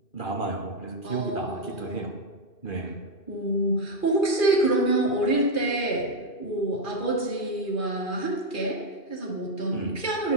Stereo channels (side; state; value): right; late; 2.4 ms